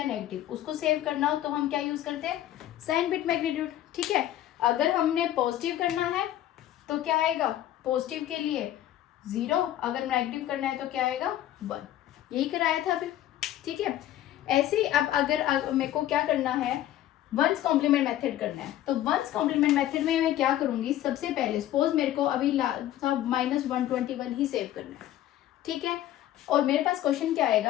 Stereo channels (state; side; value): quieter; right; 13.0 dB